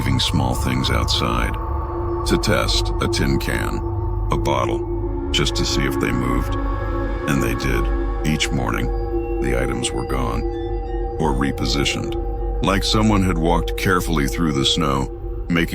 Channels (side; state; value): both; identical; correlation 1.00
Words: small things outside. To test, a tin can, a bottle, just to see if they moved. And they did. Each morning, the items were gone, or repositioned, like someone had walked carefully through the snow,